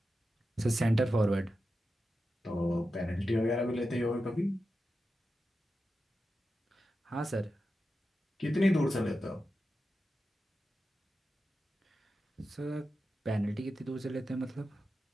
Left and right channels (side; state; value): both; normal; correlation 0.91